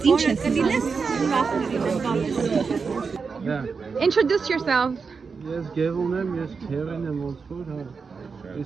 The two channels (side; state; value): left; quieter; 5.2 dB